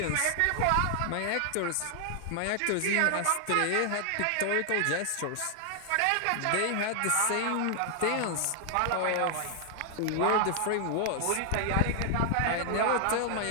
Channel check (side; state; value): both; different; correlation 0.00